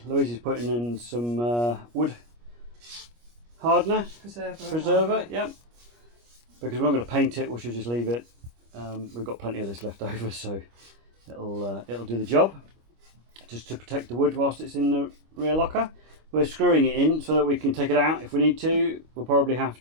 Louise is putting in some wood hardener. Preserver, yep. Because we're not going to paint it, we should just leave it. We've got plenty of this left over, so it'll do the job. Just to protect the wood whilst it's in the rear locker. We're screwing it in so that we can take it out if we need to. We'll probably have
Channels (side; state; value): left; late; 25 ms